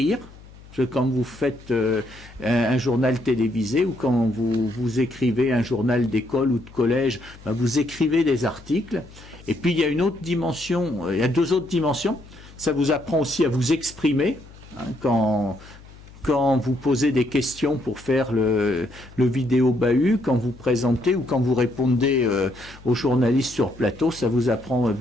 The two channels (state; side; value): noise; left; hum, 21 dB below the sound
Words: Quand vous faites un journal télévisé ou quand vous écrivez un journal d'école ou de collège, vous écrivez des articles. Et puis il y a une autre dimension, il y a deux autres dimensions. Ça vous apprend aussi à vous exprimer. Quand vous posez des questions pour faire le vidéo bahut, quand vous présentez ou quand vous répondez aux journalistes sur plateau, ça vous apprend à